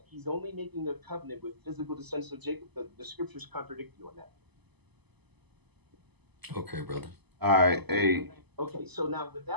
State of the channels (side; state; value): left; late; 0.99 ms